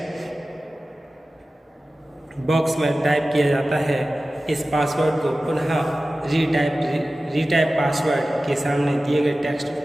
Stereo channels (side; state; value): both; normal; correlation 0.96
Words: बॉक्स में टाइप किया जाता है। इस पासवर्ड को पुनः रीटाइप पासवर्ड के सामने दिए गए टेक्स्ट